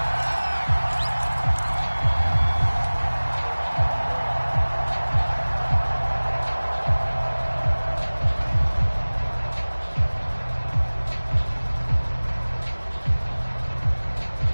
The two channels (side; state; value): both; inverted; correlation -1.00